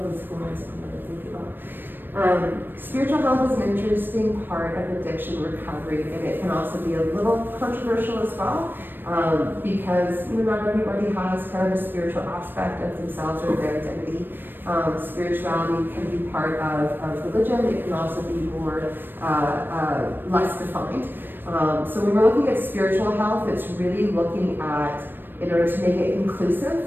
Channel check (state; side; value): late; left; 0.095 ms